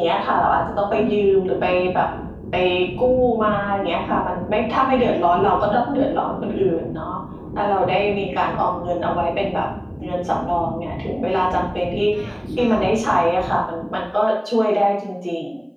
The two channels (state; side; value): identical; both; correlation 1.00